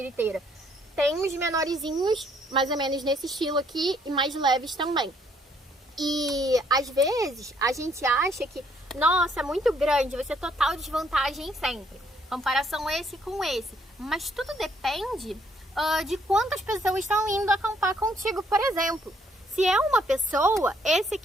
Tem uns menorzinhos, mais ou menos nesse estilo aqui, e mais leves também. E às vezes a gente acha que, nossa, é muito grande, vai ser total desvantagem sempre. Comparação esse com esse. Mas tudo depende de quantas pessoas estão indo acampar contigo, por exemplo. Se é uma pessoa, esse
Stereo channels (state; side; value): normal; both; correlation 0.67